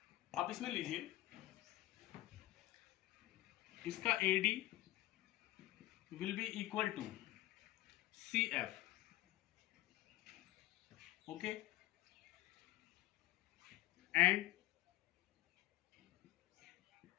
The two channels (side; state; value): right; quieter; 17.1 dB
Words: आप इसमें लीजिए, इसका AD will be equal to CF, okay, and